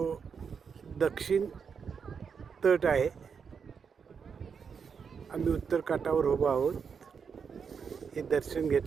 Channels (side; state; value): left; quieter; 6.3 dB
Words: दक्षिण तट आहे. आम्ही उत्तर काठावर उभो आहोत. हे दर्शन